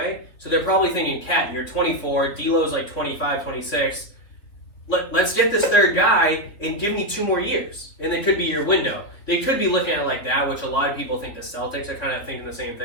So they're probably thinking, Cat, you're 24. D'Lo's 25, 26. Let's get this third guy and give me 2 more years. And it could be your window. They could be looking at it like that, which a lot of people think the Celtics are kind of thinking the same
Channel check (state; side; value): late; right; 3.9 ms